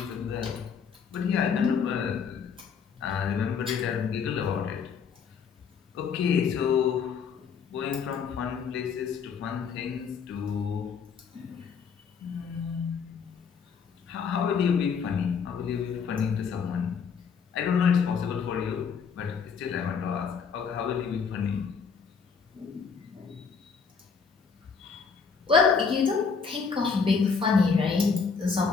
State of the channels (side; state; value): right; quieter; 5.9 dB